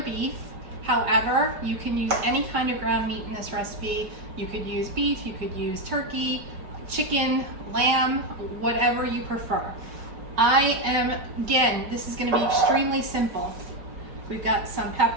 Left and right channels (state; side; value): late; left; 5.7 ms